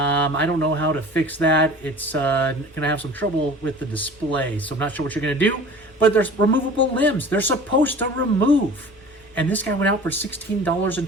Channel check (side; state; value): left; noise; hum, 29 dB below the sound